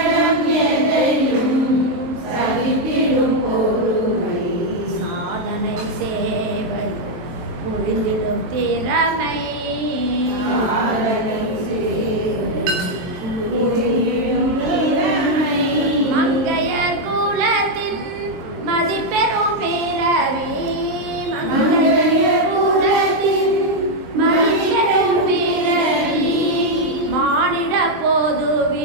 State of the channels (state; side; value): late; left; 23 ms